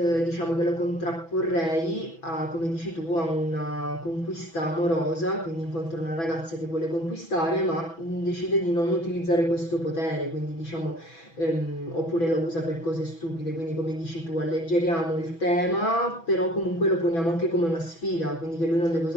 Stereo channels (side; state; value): right; late; 6.1 ms